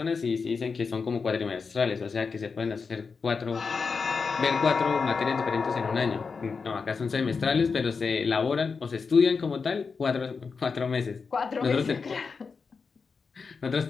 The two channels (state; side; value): quieter; right; 5.1 dB